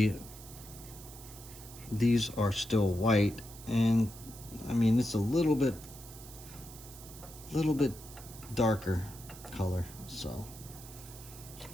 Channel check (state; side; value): noise; right; hiss, 16 dB below the sound